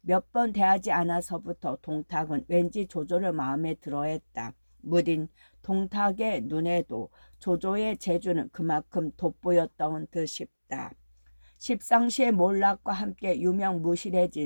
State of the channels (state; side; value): inverted; both; correlation -1.00